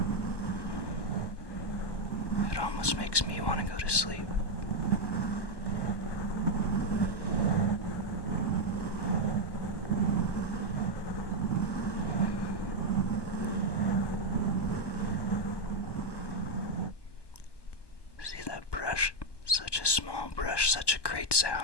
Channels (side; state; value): right; late; 1.2 ms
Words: It almost makes me want to go to sleep. See that brush? Such a small brush, such a great